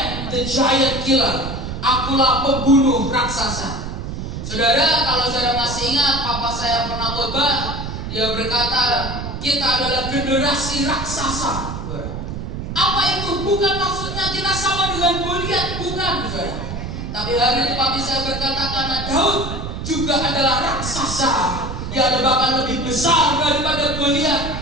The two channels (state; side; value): noise; right; rumble, 6 dB below the sound